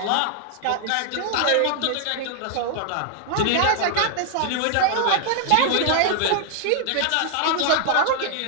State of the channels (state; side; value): different; both; correlation 0.00